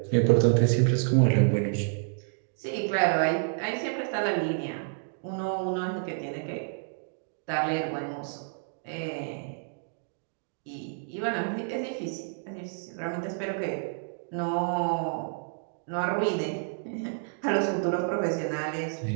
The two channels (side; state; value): left; silent; digital silence